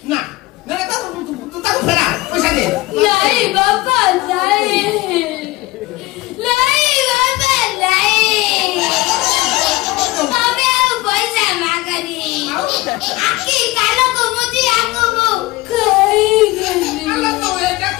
ना ना तू ताको फेरा पैसा दे नहीं बाबा नहीं नहीं बाबा नहीं हमें पैसा मांगनी आखी कालो को मुझे आको वो आलो तो एटा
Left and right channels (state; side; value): quieter; right; 19.7 dB